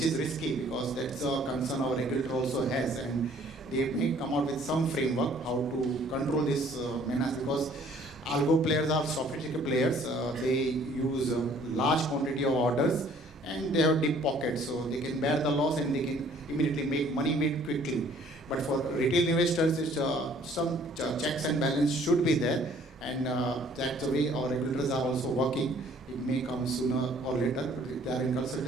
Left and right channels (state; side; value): normal; both; correlation 0.57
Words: is risky because that's a concern our regulator also has, and they may come out with some framework how to control this menace because algo players are sophisticated players. They use a large quantity of orders and they have deep pockets, so they can bear the loss and they can immediately make money made quickly. But for retail investors, some checks and balance should be there, and that's the way our regulators are also working. It may come sooner or later. They are in